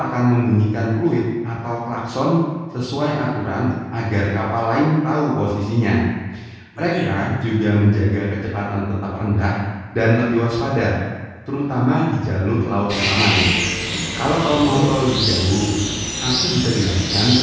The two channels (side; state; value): both; identical; correlation 1.00